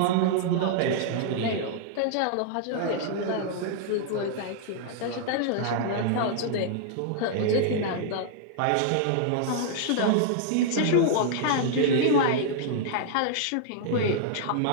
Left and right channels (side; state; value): both; different; correlation -0.01